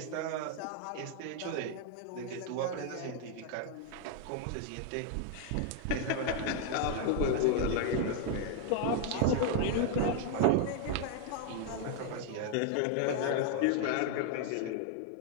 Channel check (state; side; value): different; both; correlation 0.00